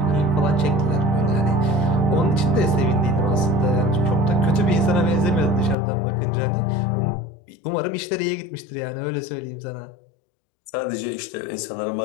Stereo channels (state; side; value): drops out; right; at 5.8 s